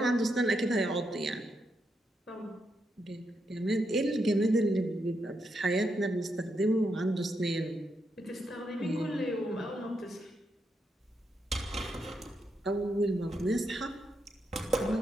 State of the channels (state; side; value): normal; both; correlation 0.82